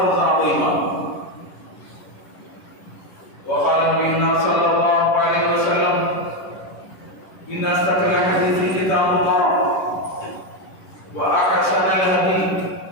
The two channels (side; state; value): right; late; 11 ms